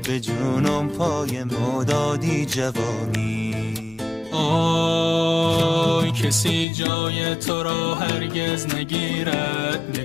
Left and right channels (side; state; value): right; drops out; at 6.7 s